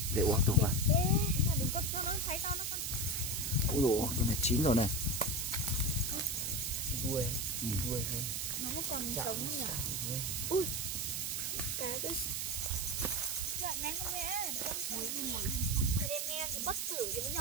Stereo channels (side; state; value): right; noise; hiss, 1 dB below the sound